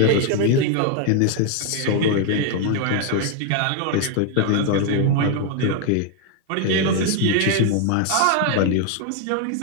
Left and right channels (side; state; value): both; different; correlation 0.01